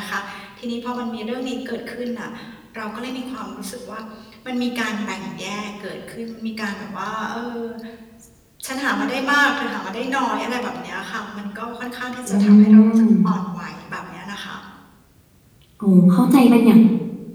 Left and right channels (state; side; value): identical; both; correlation 1.00